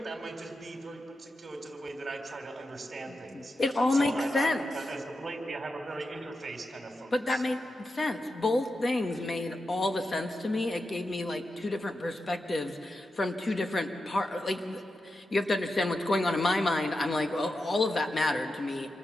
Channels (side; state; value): both; normal; correlation 0.89